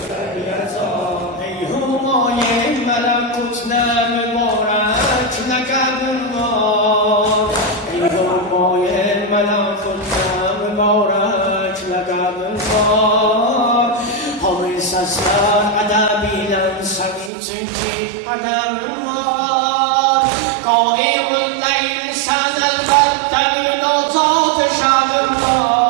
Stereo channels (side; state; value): left; drops out; at 17.3 s